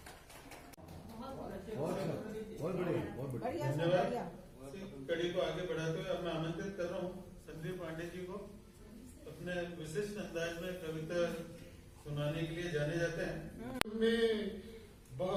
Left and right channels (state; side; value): identical; both; correlation 1.00